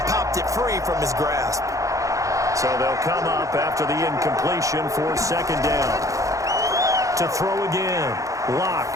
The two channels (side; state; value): left; late; 0.16 ms